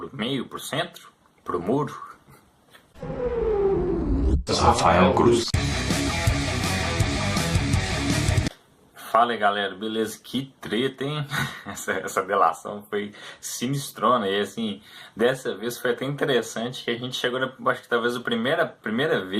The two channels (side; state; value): both; identical; correlation 1.00